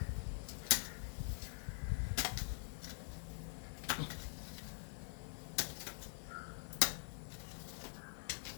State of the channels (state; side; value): silent; right; digital silence